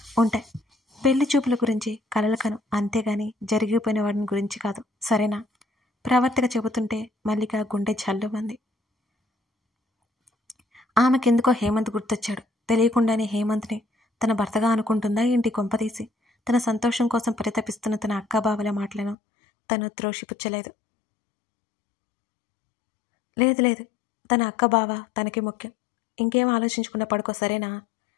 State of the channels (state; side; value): drops out; right; at 19.2 s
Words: ఉంటాయి. పెళ్లి చూపుల గురించి కలలు కను, అంతేగాని జరిగిపోయిన వాడిని గురించి కాదు, సరేనా? ప్రవర్తిక చెబుతుంటే మల్లిక గుండె జల్లుమంది. ఆమెకెందుకో హేమంత్ గుర్తొచ్చాడు. తెలియకుండానే హేమంత్ని తన భర్తగా అనుకుంటుందా ఏంటి కొంపదీసి? తన సంతోషం కోసం పరితపిస్తున్న తన అక్కాబావల మాటలను తను త్రోషిపుచ్చలేదు. లేదు, తన అక్క బావ తనకి ముఖ్యం. ఇంకేం ఆలోచించకుండా పడుకో, సరేనా